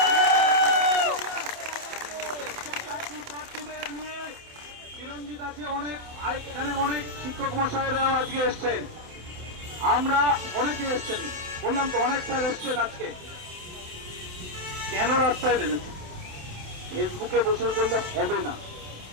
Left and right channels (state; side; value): late; left; 27 ms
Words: নিয়ে চিরঞ্জিত আছে, এখানে অনেক শিক্ষক মশাইরাও আজকে এসছেন, আমরা অনেকে এসছেন, বললাম তো অনেক স্যার এসছেন আজকে। কেন রাস্তায় নেমেছে? ফেসবুকে বসে করলে হবে না।